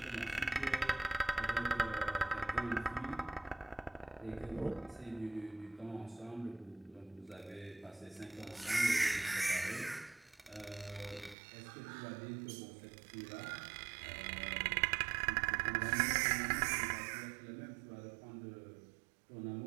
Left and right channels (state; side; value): drops out; left; at 11.4 s